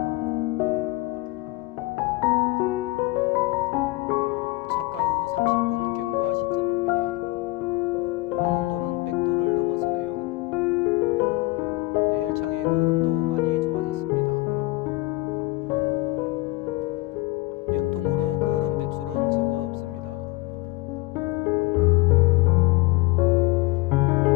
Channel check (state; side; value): quieter; right; 20.7 dB